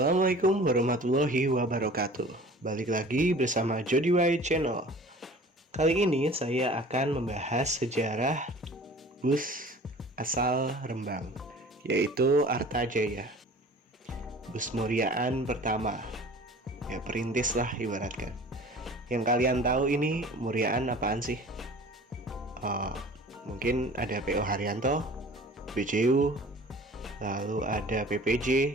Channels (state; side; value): normal; both; correlation 0.45